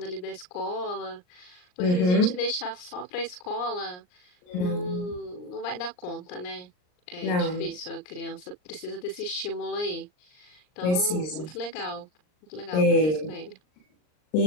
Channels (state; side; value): late; right; 39 ms